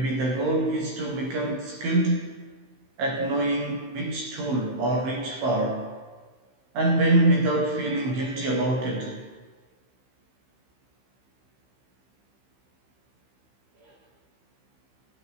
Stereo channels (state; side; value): late; left; 15 ms